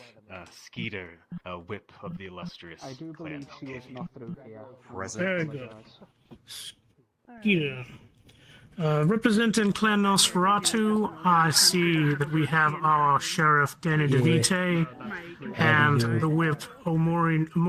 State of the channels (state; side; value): identical; both; correlation 1.00